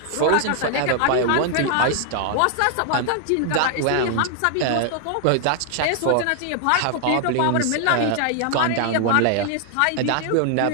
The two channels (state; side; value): different; both; correlation 0.00